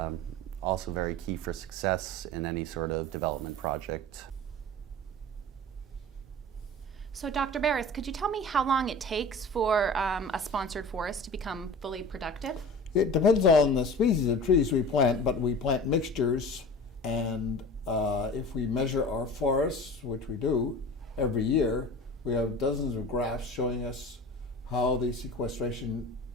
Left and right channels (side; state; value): both; normal; correlation 0.37